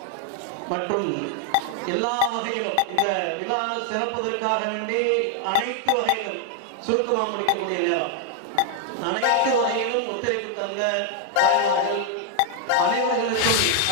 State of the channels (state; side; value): different; both; correlation 0.00